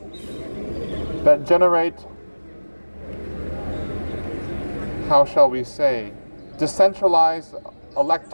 that generate, how shall we say, decentralized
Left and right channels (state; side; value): inverted; both; correlation -1.00